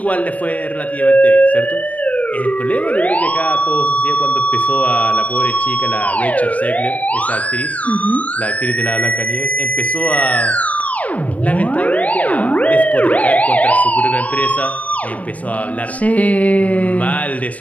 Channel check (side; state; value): right; late; 0.069 ms